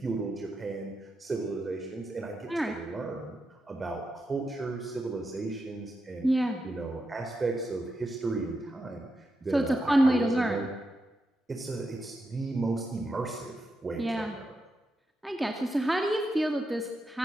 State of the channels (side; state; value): both; normal; correlation 0.85